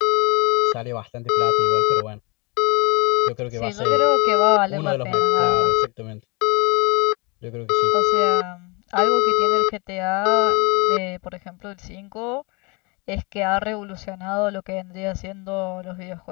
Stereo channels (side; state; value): right; quieter; 28.6 dB